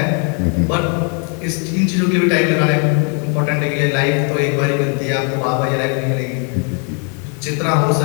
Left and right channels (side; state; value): right; quieter; 38.6 dB